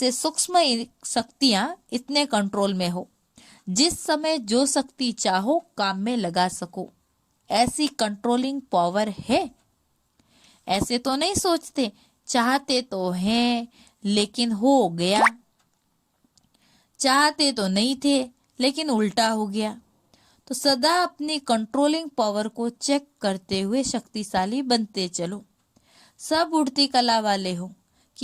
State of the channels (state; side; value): identical; both; correlation 1.00